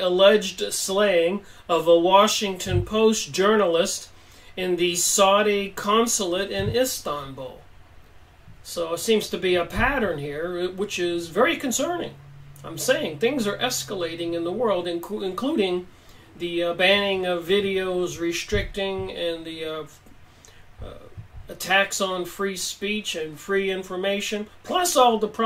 slaying of a Washington Post journalist in the Saudi consulate in Istanbul. So it seems to be a pattern here, which is very concerning. I'm saying things are escalating in the world, including the banning of videos, restricting, and the attacks on free speech and free information, plus all the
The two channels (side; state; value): both; identical; correlation 1.00